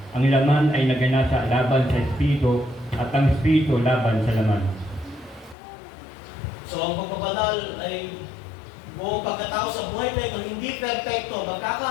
ang laman ay naganasa laban sa Espiritu at ang Espiritu laban sa laman. So ang pagpabanal ay buong pagkatao sa buhay na ito, hindi perfecto.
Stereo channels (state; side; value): drops out; right; at 5.6 s